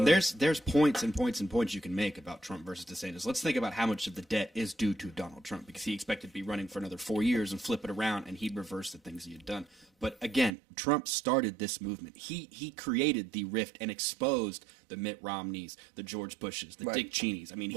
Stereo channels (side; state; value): left; drops out; at 10.5 s